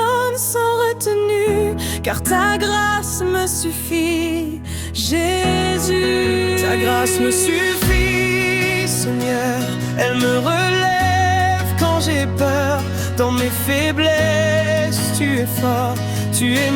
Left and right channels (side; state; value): both; identical; correlation 1.00